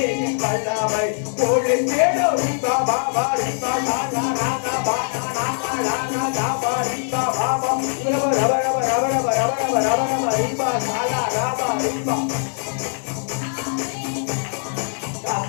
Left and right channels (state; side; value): silent; right; digital silence